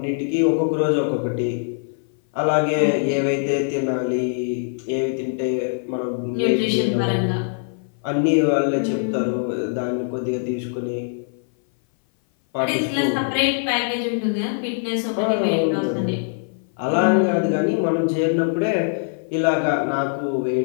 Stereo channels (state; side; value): silent; right; 59 dB below the other